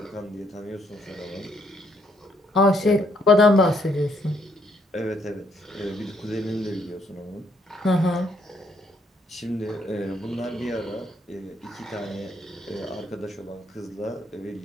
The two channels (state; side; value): normal; both; correlation 0.71